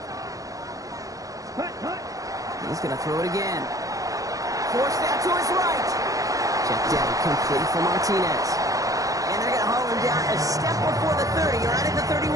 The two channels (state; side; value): late; left; 0.17 ms